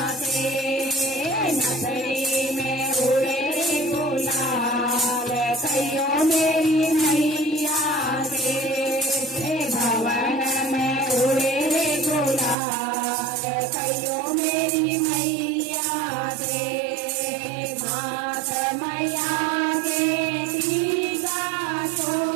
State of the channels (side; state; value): left; drops out; at 12.6 s